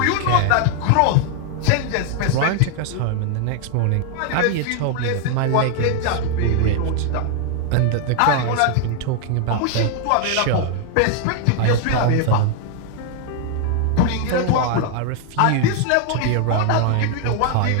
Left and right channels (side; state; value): both; different; correlation 0.00